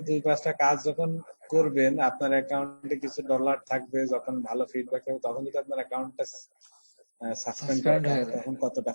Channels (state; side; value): inverted; both; correlation -1.00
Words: 2-5টা কাজ যখন করবেন, আপনার অ্যাকাউন্টে কিছু ডলার থাকবে, যখন ভালো ফিডব্যাক হবে, তখন যদি আপনার অ্যাকাউন্টটা সাসপেন্ড করে সাসপেন্ড দেয় হয়ে যায়। তখন কতটা